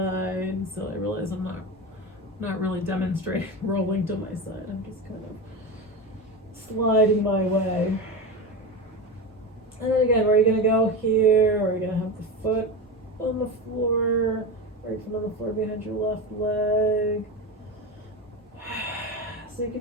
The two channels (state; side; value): normal; both; correlation 0.21